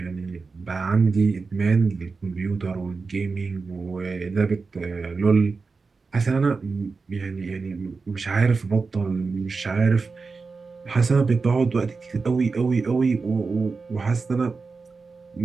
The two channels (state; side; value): quieter; left; 4.4 dB